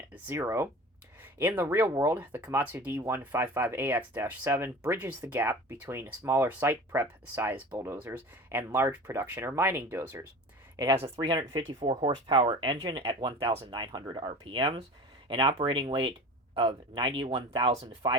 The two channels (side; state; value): both; normal; correlation 0.36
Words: In the real world, the Komatsu D155AX-7 bridges the gap between smaller site prep size bulldozers and large production or mining dozers. It has a 354 horsepower engine at 1,900 RPMs, an operating weight of